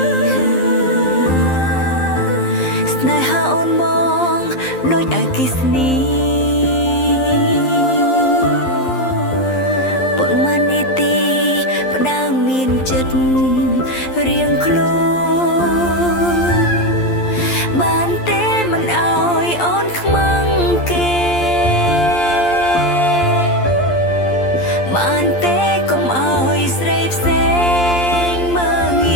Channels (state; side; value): late; right; 11 ms